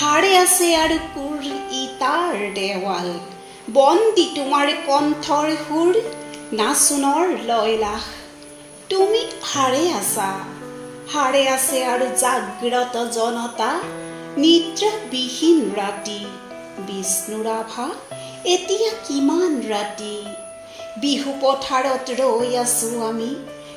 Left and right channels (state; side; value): identical; both; correlation 1.00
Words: সাৰে আছে আৰু কোৰ ইটাৰ দেৱাল, বন্দী তোমাৰ কণ্ঠৰ সুৰ, নাচোনৰ লয়লাস। তুমি সাৰে আছা, সাৰে আছে আৰু জাগ্ৰত জনতা, নিদ্ৰাবিহীন ৰাতি। বিষ্ণুৰাভা, এতিয়া কিমান ৰাতি, বিহু পথাৰত ৰৈ আছোঁ আমি,